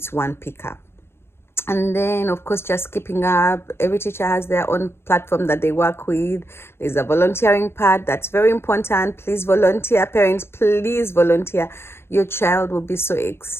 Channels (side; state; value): right; late; 0.12 ms